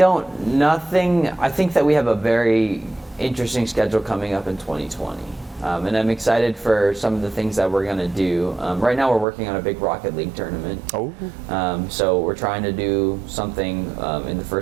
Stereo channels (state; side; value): drops out; left; at 9.2 s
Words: think that we have a very interesting schedule coming up in 2020. And I'm excited for some of the things that we're going to do. Right now we're working on a big Rocket League tournament. Oh. So we're trying to do something in the